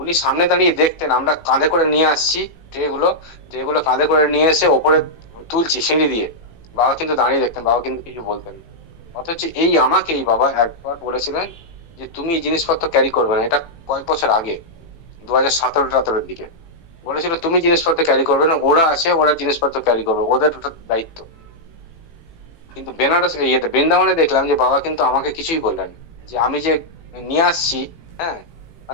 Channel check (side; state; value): right; late; 18 ms